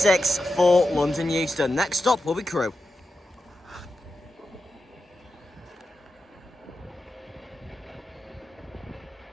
for London Euston. Next stop will be Crewe.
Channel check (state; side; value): normal; both; correlation 0.90